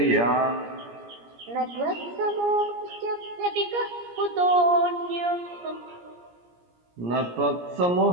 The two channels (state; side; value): late; left; 17 ms